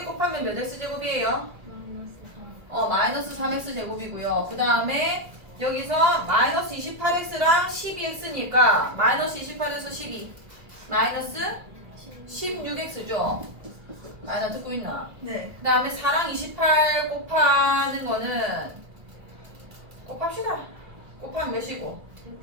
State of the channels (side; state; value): left; late; 2.5 ms